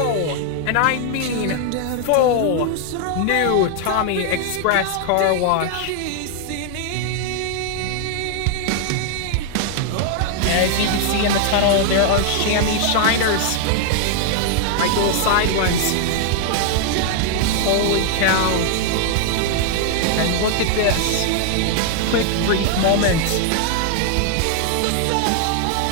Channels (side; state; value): both; different; correlation 0.00